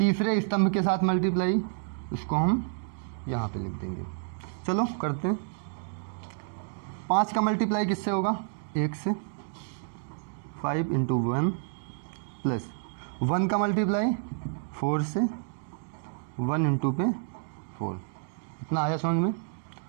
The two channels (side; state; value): left; silent; digital silence